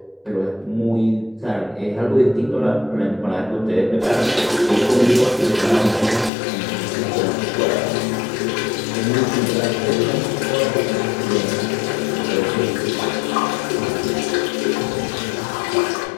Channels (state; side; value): drops out; right; at 6.3 s